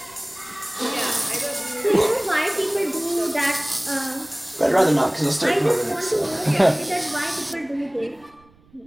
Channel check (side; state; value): right; noise; rumble, 30 dB below the sound